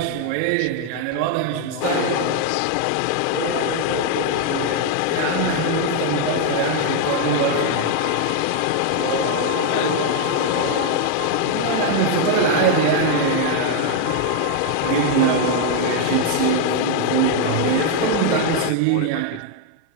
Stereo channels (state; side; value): different; both; correlation 0.00